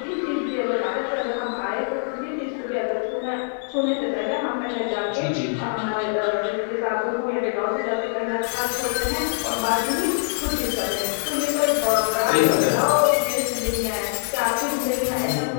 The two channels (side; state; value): right; silent; 63 dB below the other